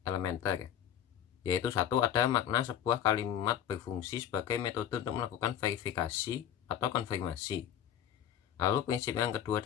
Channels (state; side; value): quieter; right; 10.0 dB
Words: elementer, yaitu satu, ada makna sebuah kalimat berfungsi sebagai metode untuk melakukan verifikasi atau konfirmasi. Lalu prinsip yang kedua